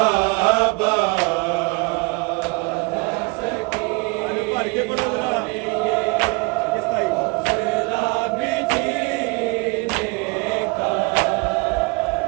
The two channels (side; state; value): left; quieter; 29.0 dB